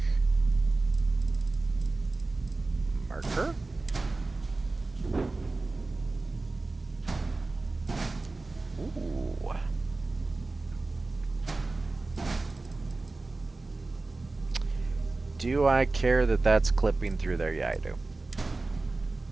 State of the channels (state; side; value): quieter; left; 3.4 dB